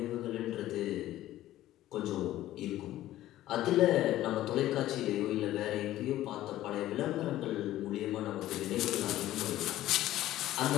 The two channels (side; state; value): right; quieter; 14.4 dB